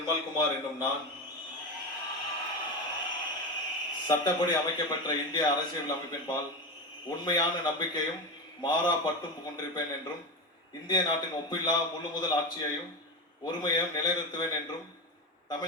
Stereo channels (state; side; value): normal; both; correlation 0.19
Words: என்னும் நான் சட்டப்படி அமைக்கப்பட்ட இந்திய அரசியல் அமைப்பின்பால் உண்மையான நம்பிக்கையும் மாறா பற்றும் கொண்டிருப்பேன் என்றும் இந்திய நாட்டின் ஒப்பில்லா முழு முதல் ஆட்சியையும் ஒருமையையும் நிலைநிறுத்துவேன் என்றும்